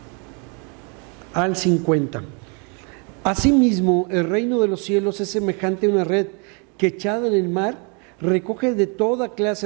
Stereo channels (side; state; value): left; quieter; 34.9 dB